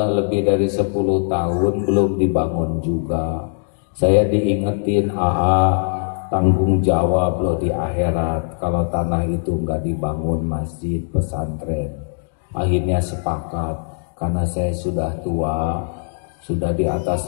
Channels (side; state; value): right; silent; digital silence